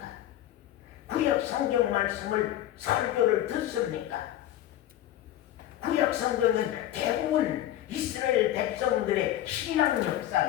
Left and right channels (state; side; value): quieter; right; 13.1 dB